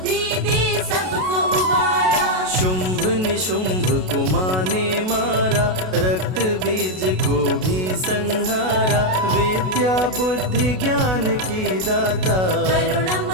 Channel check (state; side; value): late; left; 32 ms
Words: दे सबको उबारा। शुंभ निशुंभ को माँ ने मारा, रक्त बीज को भी संहारा। विद्या बुद्धि ज्ञान की दाता,